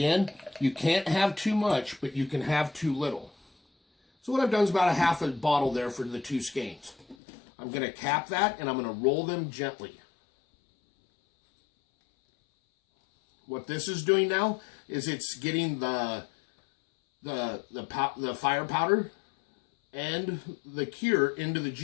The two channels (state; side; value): drops out; right; at 7.2 s